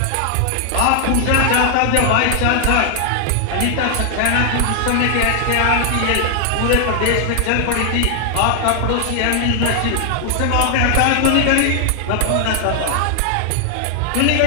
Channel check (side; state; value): both; different; correlation 0.00